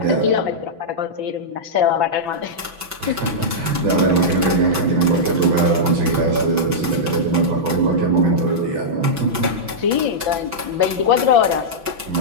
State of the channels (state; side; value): late; left; 6.0 ms